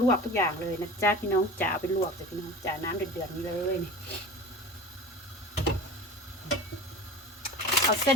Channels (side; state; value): both; normal; correlation 0.37